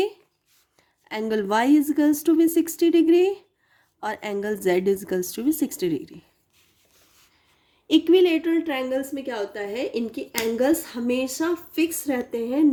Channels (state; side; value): identical; both; correlation 1.00